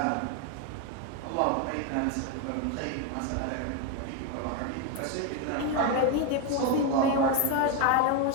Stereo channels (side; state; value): both; different; correlation 0.02